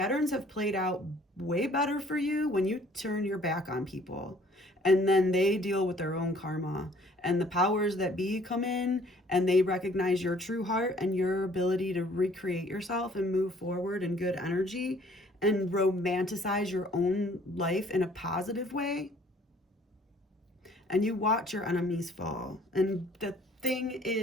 have played out way better for you when you turn your back on people and then they deal with their own karma, and the powers that be come in and they recognize your true heart and your ability to recreate yourself and move forward in good energy and romanticize your own life in a positive way. And you watch your enemies fall. And the thing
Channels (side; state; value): both; normal; correlation 0.57